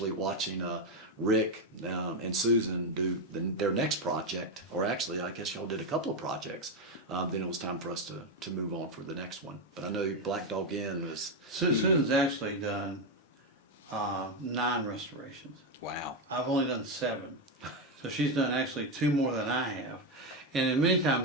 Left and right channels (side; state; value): both; normal; correlation 0.08